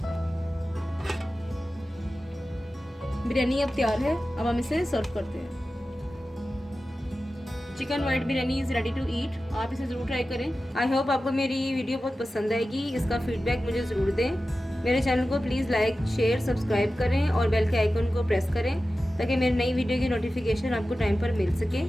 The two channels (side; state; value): both; normal; correlation 0.94